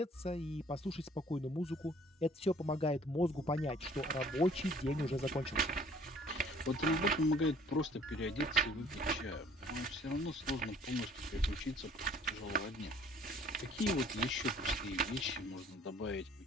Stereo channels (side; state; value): both; normal; correlation 0.55